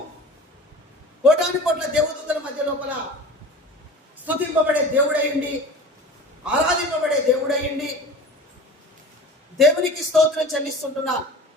కోటాను కోట్ల దేవదూతల మధ్య లోపల స్తుతింపబడే దేవుడయ్యండి, ఆరాధింపబడే దేవుడయ్యండి. దేవునికి స్తోత్రం చెల్లిస్తుంటున్నా.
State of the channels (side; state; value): both; normal; correlation 0.37